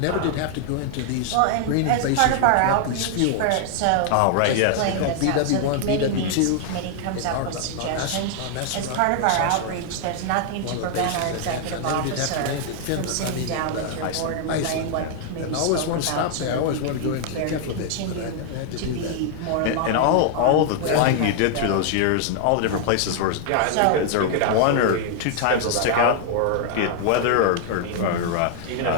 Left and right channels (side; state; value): both; different; correlation 0.00